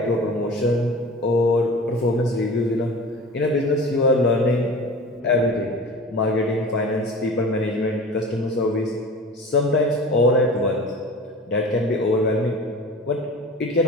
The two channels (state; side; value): normal; both; correlation 0.37